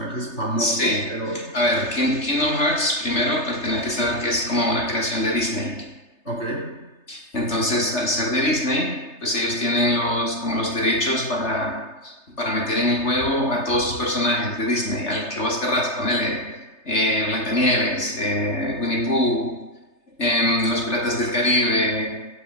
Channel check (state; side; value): late; right; 3.3 ms